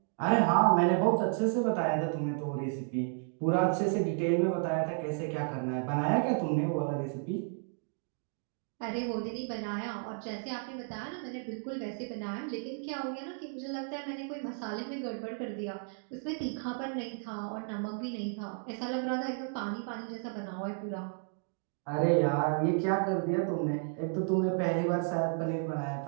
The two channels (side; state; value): left; silent; 56 dB below the other